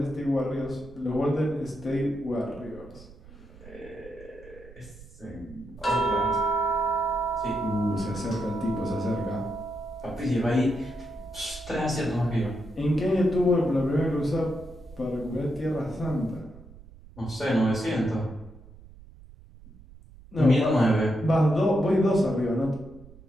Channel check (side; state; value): right; noise; rumble, 20 dB below the sound